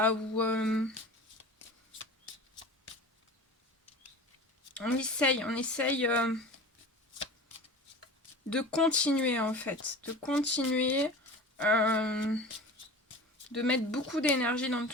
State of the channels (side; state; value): both; normal; correlation 0.36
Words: ou on essaye de continuer en fait, de continuer, de mettre beaucoup d'énergie dans